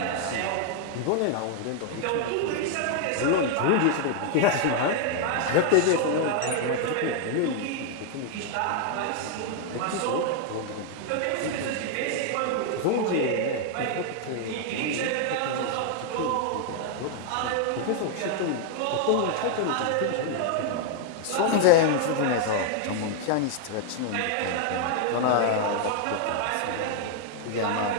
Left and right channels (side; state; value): both; different; correlation 0.00